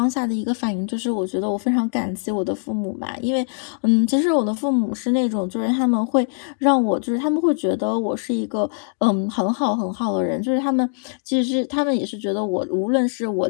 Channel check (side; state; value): right; silent; digital silence